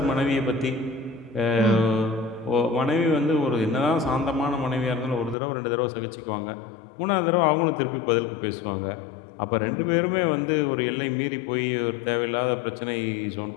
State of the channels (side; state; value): right; drops out; at 5.4 s